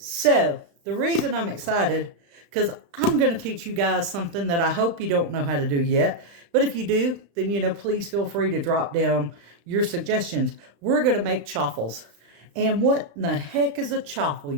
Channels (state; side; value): late; left; 35 ms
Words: the reason I'm excited, because I'm going to teach you guys something that I hope you don't know how to do yet. But if you do, then, please feel free to drop down your suggestions. We're going to make chaffles. And what in the heck is a chaffle,